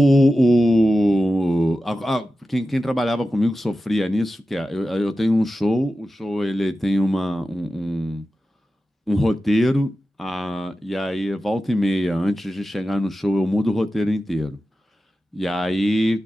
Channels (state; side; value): normal; both; correlation 0.93